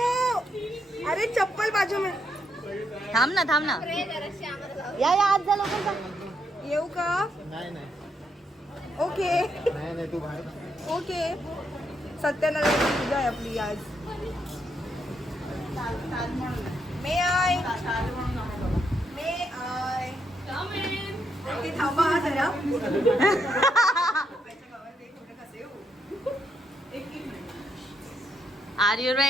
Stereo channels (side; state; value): both; normal; correlation 0.78